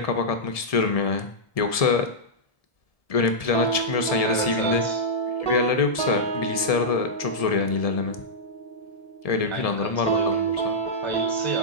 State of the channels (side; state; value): right; late; 1.7 ms